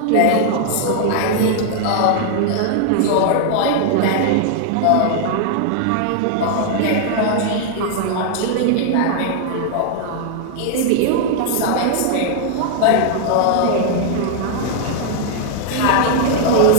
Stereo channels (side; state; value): both; different; correlation 0.00